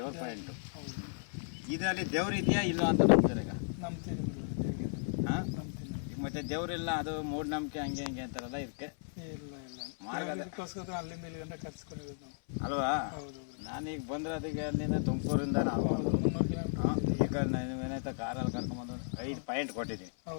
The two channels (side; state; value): right; silent; 54 dB below the other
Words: ಪಾಯಿಂಟು. ಇದರಲ್ಲಿ ದೇವ್ರು ಇದೆಯಾ ಇಲ್ಲೋ ಅಂತ ನಂಬ್ತಾರೆ ಈಗ. ಹಾಂ, ಈಗ ಮತ್ತೆ ದೇವ್ರಿಲ್ಲ, ಅದು ಮೂಢನಂಬಿಕೆ ಹಂಗೆ ಹಿಂಗೆ ಅಂತಾರಲ್ಲ, ಇದಕ್ಕೆ ಅಲ್ವಾ? ನಾನೀಗ ಬಂದ್ರೆ ಅದಕ್ಕೆ ಅಲ್ಲಿಂದ ತುಮಕೂರಿಂದ ನಾವು ಈಗ ಏನಾಯ್ತಾ ಕಾರಲ್ಲಿ ಕರ್ಕೊಂಬಂದು 5 ಪಾಯಿಂಟ್ ಕೊಟ್ಟಿದ್ದೀನಿ.